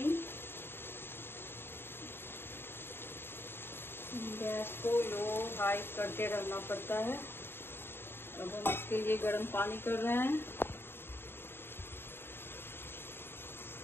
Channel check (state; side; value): late; right; 0.11 ms